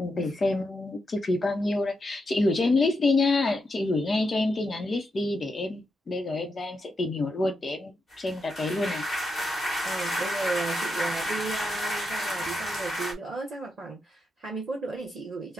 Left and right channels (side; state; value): both; normal; correlation 0.85